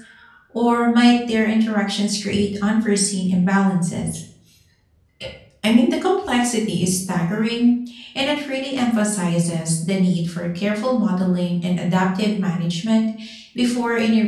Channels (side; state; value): both; identical; correlation 1.00